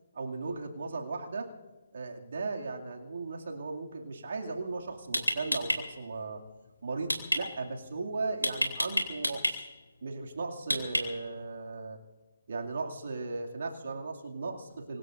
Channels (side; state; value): both; inverted; correlation -0.91